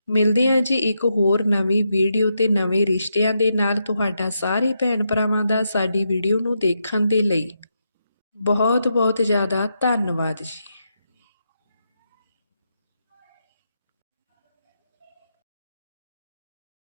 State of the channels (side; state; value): both; inverted; correlation -0.83